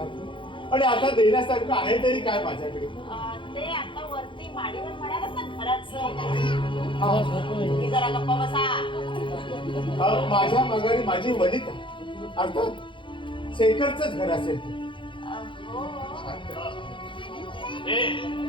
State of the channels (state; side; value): late; right; 0.24 ms